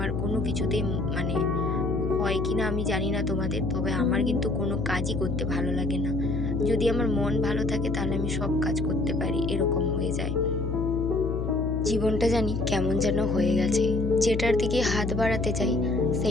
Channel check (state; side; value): noise; left; hum, 2 dB below the sound